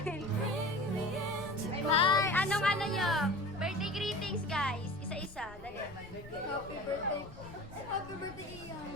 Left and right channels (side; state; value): left; noise; rumble, 18 dB below the sound